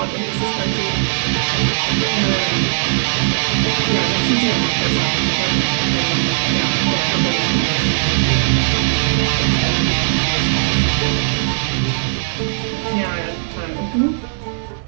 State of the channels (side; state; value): left; silent; digital silence